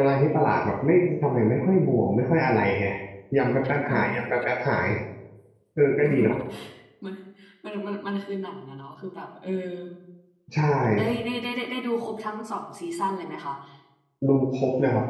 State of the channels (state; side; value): identical; both; correlation 1.00